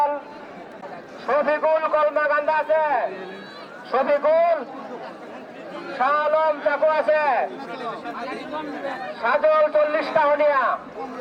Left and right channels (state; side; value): identical; both; correlation 1.00